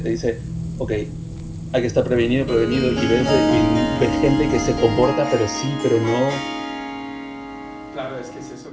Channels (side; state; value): both; identical; correlation 1.00